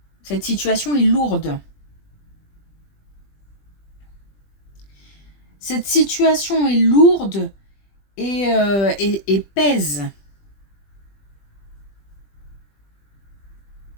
cette situation est lourde. Cette situation est lourde et pèse.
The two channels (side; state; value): right; late; 20 ms